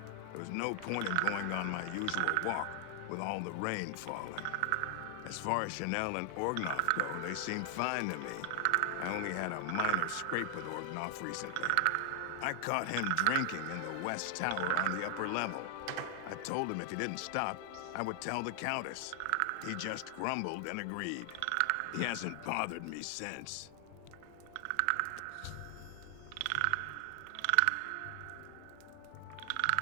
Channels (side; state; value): both; different; correlation 0.00